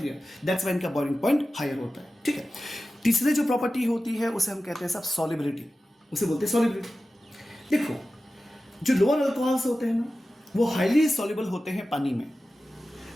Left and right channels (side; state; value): both; normal; correlation 0.94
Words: That's why इनका बॉइलिंग पॉइंट हायर होता है, ठीक है। तीसरी जो प्रॉपर्टी होती है उसे हम कहते हैं सब सॉलिबिलिटी। उसे बोलते हैं सॉल्युबिलिटी। देखो, जो लोअर अल्कोहल्स होते हैं ना, वो हाईली सॉल्युबल होते हैं पानी में।